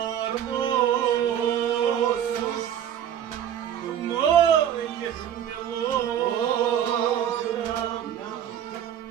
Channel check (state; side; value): quieter; left; 9.9 dB